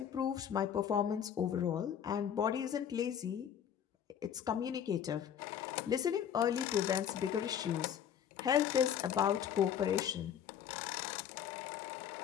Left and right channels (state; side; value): quieter; right; 9.0 dB